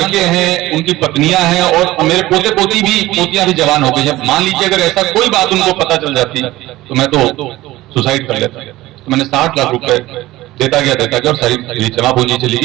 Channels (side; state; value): left; quieter; 17.4 dB